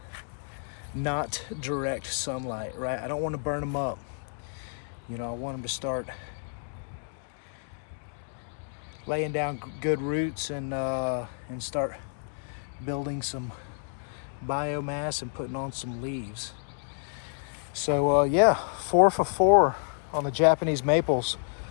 not direct sunlight, right? I don't want to burn them up. You know, I want them to start laying down good roots and start building some biomass and putting on some leaves. So yeah, 4 for 4 on the Japanese maples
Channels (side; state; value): right; silent; digital silence